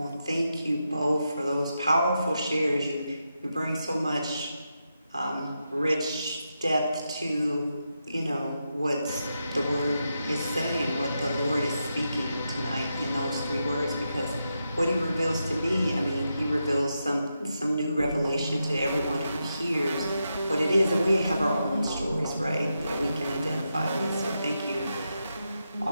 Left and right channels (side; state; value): both; inverted; correlation -0.86